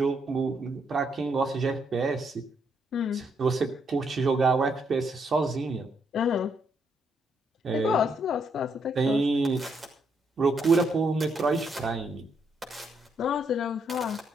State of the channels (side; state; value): both; normal; correlation 0.75